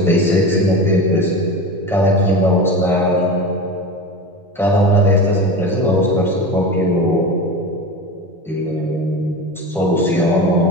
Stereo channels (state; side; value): normal; both; correlation 0.28